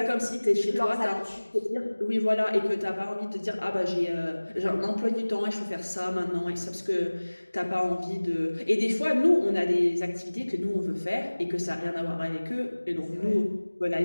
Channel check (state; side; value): inverted; both; correlation -1.00